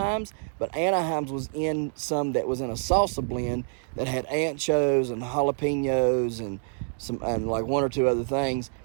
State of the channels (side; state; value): left; silent; digital silence